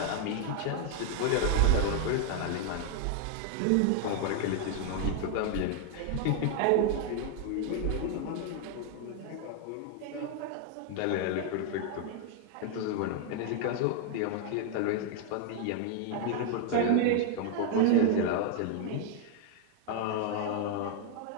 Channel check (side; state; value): both; different; correlation 0.00